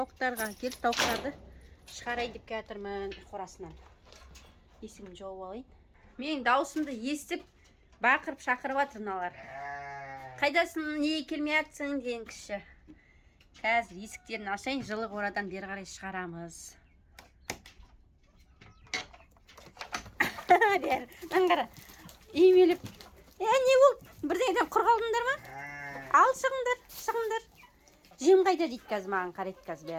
келіп тауықтарды шығарайын деп келатырмын қорасынан. Есігімді жауып алайын. Менің даусымды естіп бақырып шақырып жатыр мыналар. Қайдасың, неге келмей жатсың деген кіші. Қазір есіктерін ашайын, жылы қорадан бері қарай шығарамыз. Бер, аңғара. Үймеліп. Не болды? Бірдеңеден құр қалдыңдар ма? Ал шығыңдар. Жем қайда дейді қазір маған қарайды қазір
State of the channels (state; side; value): identical; both; correlation 1.00